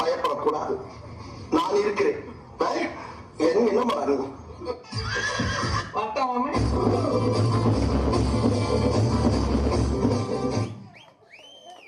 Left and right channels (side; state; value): both; identical; correlation 1.00